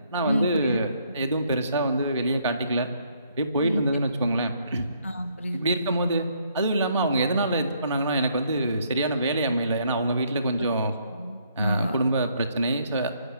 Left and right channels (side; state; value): both; inverted; correlation -0.69